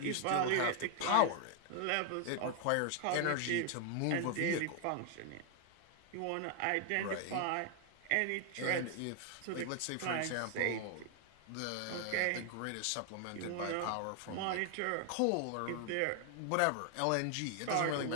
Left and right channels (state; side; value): different; both; correlation 0.00